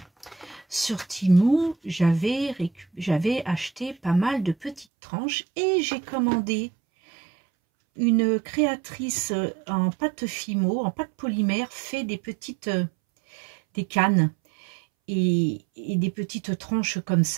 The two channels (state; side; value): drops out; left; at 4.9 s